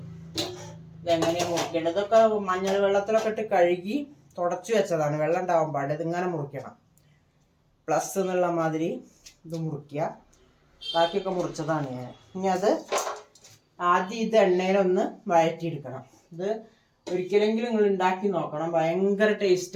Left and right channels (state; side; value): identical; both; correlation 1.00